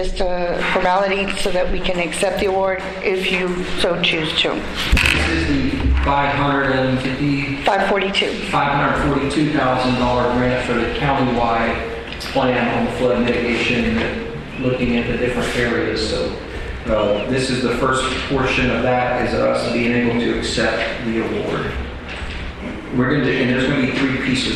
a formality so that we can accept the award if you so choose to. This is the $542,000 grant for the countywide plan on the flood mitigation, looking at the different areas. So this is the first portion of that, is us being able to accept the award. We're going to, and there's going to be 3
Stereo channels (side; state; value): both; identical; correlation 1.00